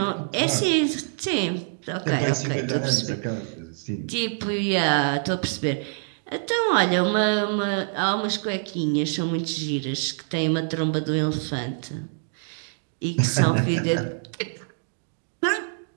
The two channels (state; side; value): silent; left; digital silence